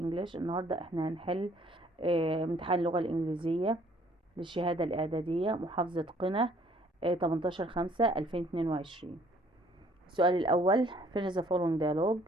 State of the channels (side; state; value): both; normal; correlation 0.60